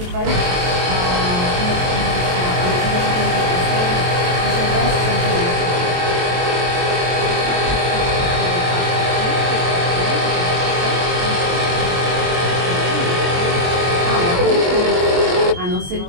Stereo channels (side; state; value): left; late; 23 ms